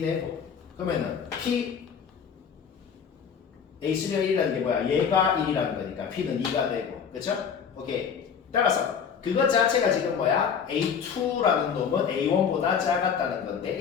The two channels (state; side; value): quieter; right; 7.0 dB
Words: 되고 그러면은 P A3가 1이라는 게 뭐야? 얘가 1이라는 거니까 P는 2가 되고 그렇죠? 오케이. 따라서 그것 자체가 지금 뭐야? A2라는 놈은 A1보다 작았다는 건데